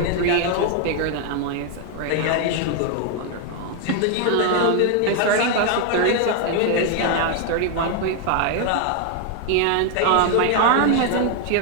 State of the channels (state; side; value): different; both; correlation 0.00